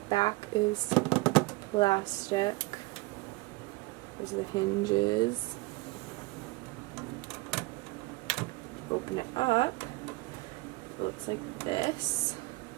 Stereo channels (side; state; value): left; quieter; 22.9 dB